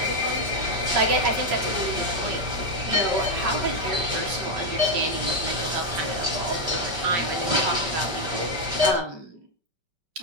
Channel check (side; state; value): left; late; 5.2 ms